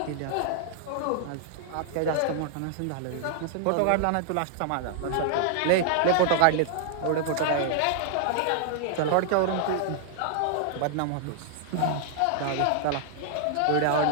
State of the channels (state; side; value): different; both; correlation -0.01